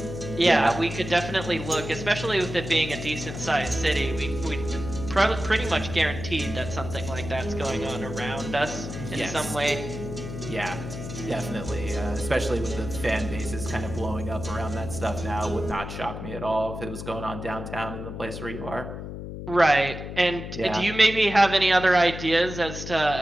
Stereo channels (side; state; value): left; noise; hum, 8 dB below the sound